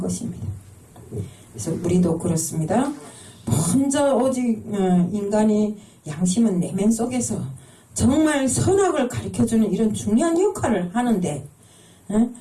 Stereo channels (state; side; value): identical; both; correlation 1.00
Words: 그래서 우리도 그렇습니다. 먼저 오직 인간이 양심은 내면 속에서 정말 선악을 가르쳐주는 이런 중요한 역할을 하는데